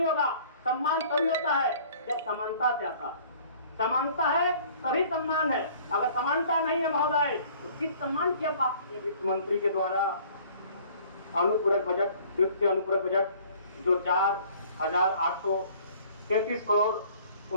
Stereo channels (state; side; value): inverted; both; correlation -0.53